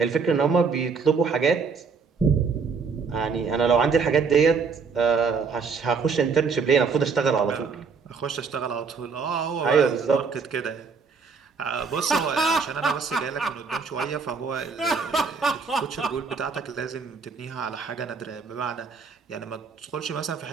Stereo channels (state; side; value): quieter; left; 5.2 dB